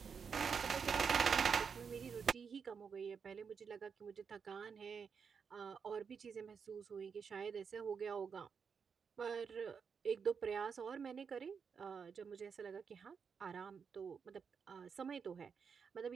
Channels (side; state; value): left; quieter; 6.2 dB